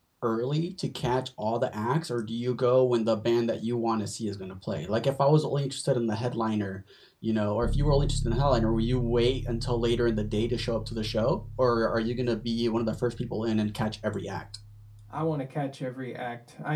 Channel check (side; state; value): both; identical; correlation 1.00